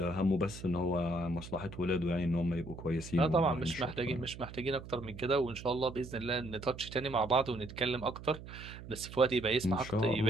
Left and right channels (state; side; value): noise; right; hum, 13 dB below the sound